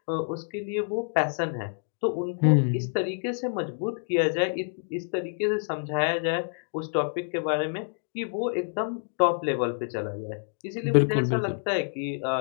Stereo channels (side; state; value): right; silent; digital silence